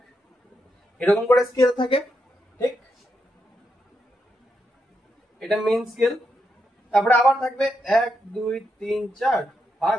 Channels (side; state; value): both; normal; correlation 0.82